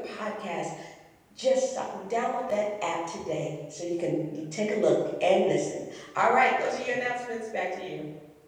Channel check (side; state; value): both; identical; correlation 1.00